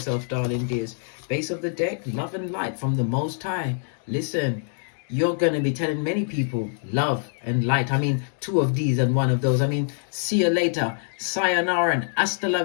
darling dears. Base of the deck, love and light from the Most High. Listen, you're going to be telling many people love and light. I mean, 2 of these and 1 of those. I mean, see you later. Sayonara and hasta la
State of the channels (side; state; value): right; silent; digital silence